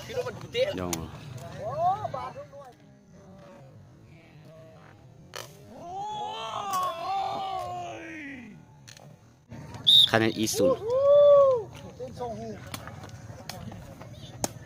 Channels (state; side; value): identical; both; correlation 1.00